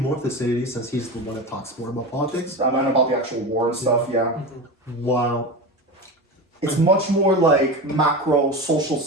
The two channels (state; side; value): normal; both; correlation 0.24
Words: Thucydides since he's the one that talks more about politics. I mean about the actual war and stuff, yeah. Wow. It's much more like macro social